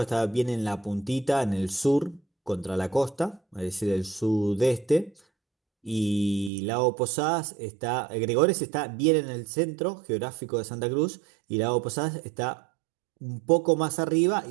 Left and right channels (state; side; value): drops out; left; at 6.5 s